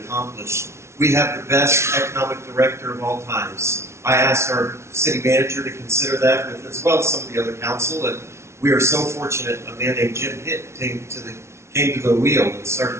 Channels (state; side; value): late; left; 0.13 ms